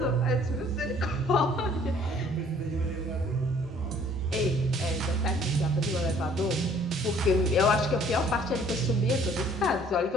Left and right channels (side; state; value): both; normal; correlation 0.57